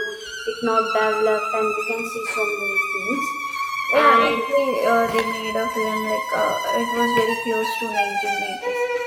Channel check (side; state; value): both; identical; correlation 1.00